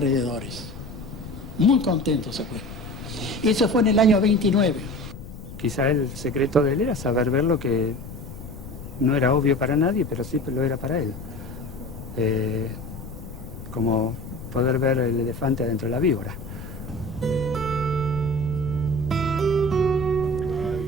Muy contento se fue. Eso fue en el año 29. Quizá el secreto de él era saber ver lo que no era obvio para nadie, pero sí lo era para él. Como poder ver el elefante adentro de la víbora.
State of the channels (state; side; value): noise; left; rumble, 13 dB below the sound